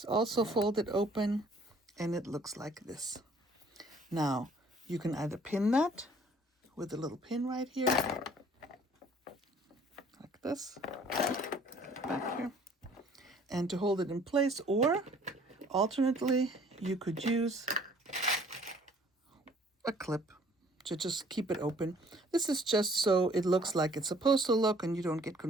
also folded open, and it looks like this. Now, you can either pin that with a little pin right here, like this, back here, and to hold it in place, or alternately, you could use a clip to just keep it open. This is just so it looks like it's supposed to look and you don't get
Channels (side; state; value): both; normal; correlation 0.56